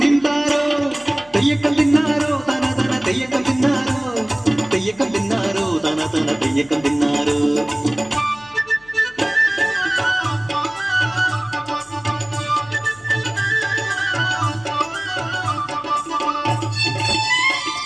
താരോ തെയ്യക്കം തിന്നാരോ തന തന തെയ്യക്കം തിന്നാരോ തെയ്യക്കം തിന്നാരോ തന തന തെയ്യക്കം തിന്നാരോ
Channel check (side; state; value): left; noise; hum, 28 dB below the sound